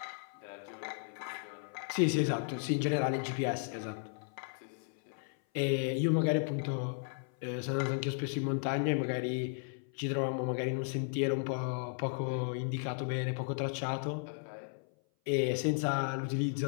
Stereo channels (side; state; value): right; silent; 55 dB below the other